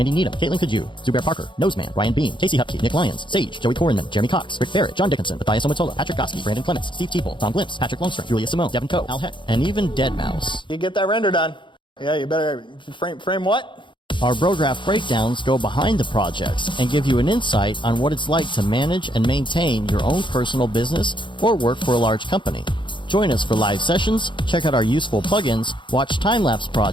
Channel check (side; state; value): right; late; 0.23 ms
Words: Needham, Caitlin Kaju, Zubair Parker, Noseman, Ryan Bean, Casey Hupke, Nick Lyons, Sage, Joey Korenman, Jeremy Cox, Rick Barrett, John Dickinson, Matthias Omatola, Patrick Goski, Brandon Clements, Steve Teeple, Tom Glimpse, Patrick Longstrom, Julia Simone, Devin Coe, Al Heck, and even Deadmau5. You get that render done. Yeah, you better frame what? Our Brograph breakdowns go behind the projects and give you an insight on what it's like to manage and maintain your own personal business or work for a large company. Join us for live sessions, check out our useful plugins, watch time-lapse